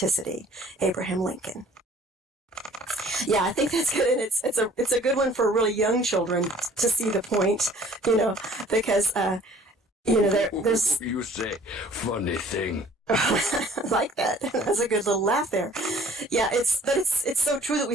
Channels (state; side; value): normal; both; correlation 0.53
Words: Abraham Lincoln. Yeah, I think that's good, and it's a good one for really young children to see the point, because there's. You say funny thing. Like that. That's a good little laugh there. Yeah, it's so true that we